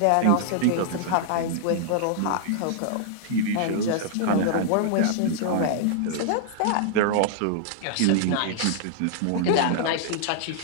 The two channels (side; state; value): both; different; correlation -0.01